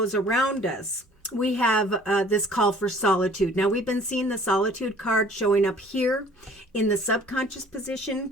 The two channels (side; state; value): both; normal; correlation 0.53